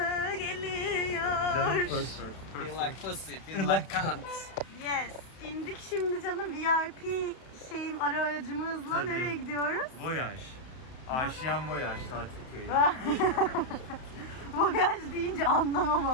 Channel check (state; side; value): late; right; 31 ms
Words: geliyor. Feel like pussy, feel like cunt. Yes. İndik şimdi canım, VIP aracımızla. Tabii. Nereye gidiyoruz? Voyaj. Aşiyan Voyaj tatil köyü. Voyaj deyince